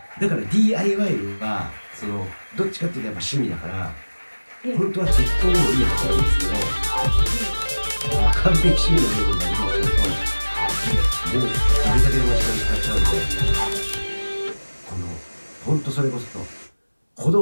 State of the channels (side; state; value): both; inverted; correlation -1.00